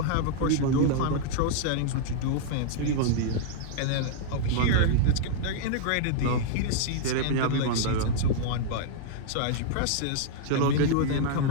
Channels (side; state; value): both; different; correlation -0.01